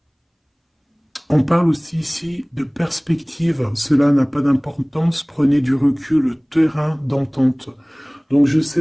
on parle aussi ici de perspective. Cela n'a pas d'importance. Prenez du recul, terrain d'entente. Donc je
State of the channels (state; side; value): identical; both; correlation 1.00